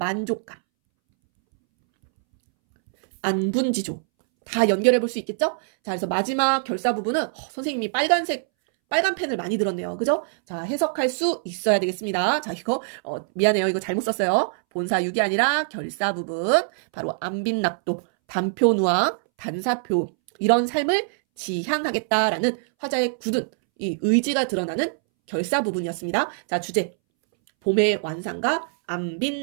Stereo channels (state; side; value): silent; left; 63 dB below the other